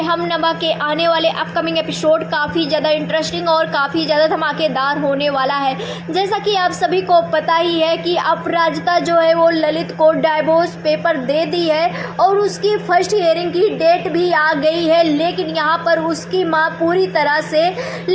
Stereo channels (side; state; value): both; identical; correlation 1.00